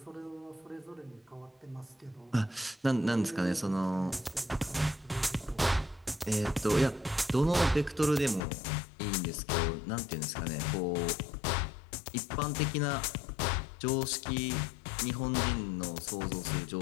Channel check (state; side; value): drops out; right; at 8.4 s